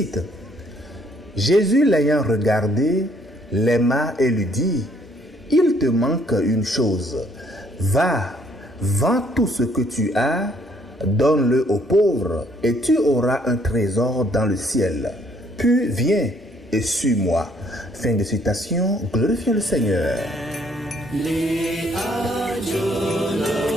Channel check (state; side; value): normal; both; correlation 0.65